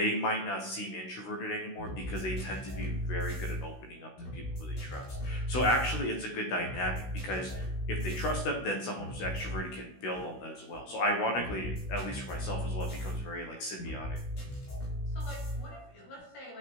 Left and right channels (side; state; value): right; late; 16 ms